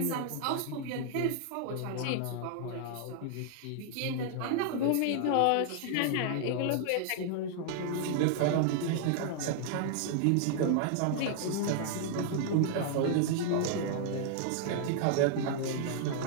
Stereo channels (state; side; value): different; both; correlation -0.01